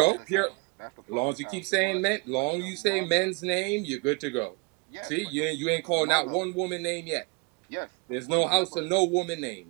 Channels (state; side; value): quieter; left; 28.4 dB